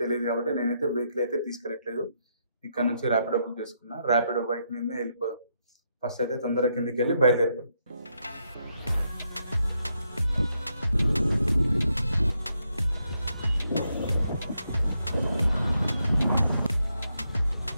తెలియదు. కాబట్టి నేనైతే వెహికల్ అయితే తీసుకెళ్ళట్లేదు. ఇక్కడ నుంచి ర్యాపిడో బుక్ చేసుకున్నా. ర్యాపిడో బైక్ మీదనే వెళ్ళిపోదాం. ఫస్ట్ అయితే తొందరగా కిందికి వెళ్ళి బయలుదేరుతాం.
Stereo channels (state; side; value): inverted; both; correlation -0.79